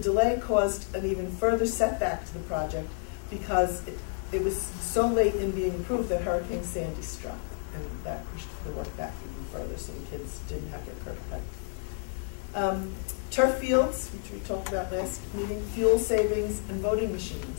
caused an even further setback to the project because it was so late in being approved that Hurricane Sandy struck, and that pushed the work back even further, so the kids didn't have their curb cut. Turf fields, which we talked about last meeting, fuel savings, and voting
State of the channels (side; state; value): right; silent; 58 dB below the other